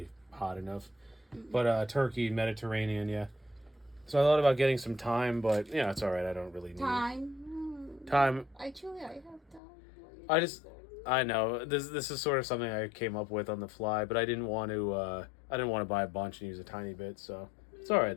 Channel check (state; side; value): drops out; right; at 9.6 s